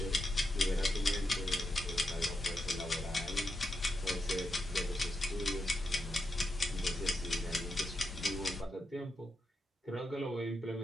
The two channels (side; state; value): both; normal; correlation 0.86